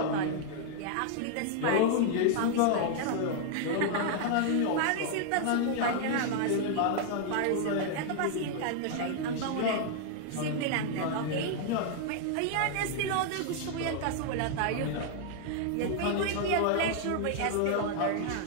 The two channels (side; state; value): both; different; correlation 0.00